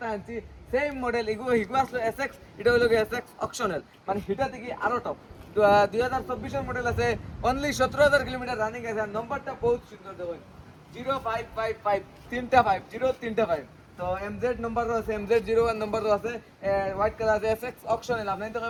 আনছি সেম মডেল, হিগো আসলো SX, এটা হলো SX অপশনাল, মানে হিটা থেকে আরো টপ। 2024 মডেল আছে, অনলি 17,000 কিলোমিটার রানিং আছে। আর নম্বরটা বহুত সুন্দর, দেখুন 0555 তিনটা 5 0355। তো MZ নম্বরও আছে, MZ01 নম্বরও আছে, হোয়াইট কালার আছে। SX অপশনাল, আপনি তো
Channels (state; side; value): identical; both; correlation 1.00